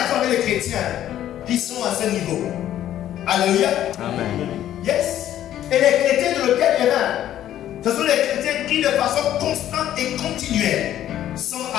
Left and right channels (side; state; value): right; quieter; 11.9 dB